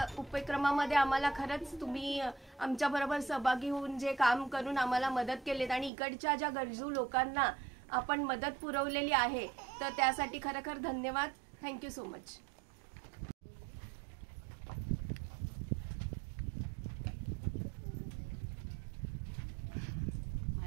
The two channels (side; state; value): left; drops out; at 5.9 s